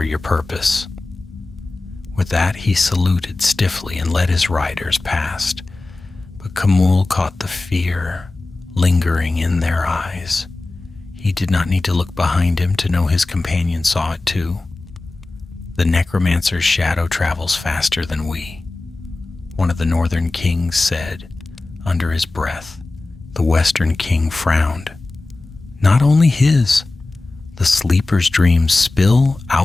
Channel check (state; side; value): quieter; right; 3.2 dB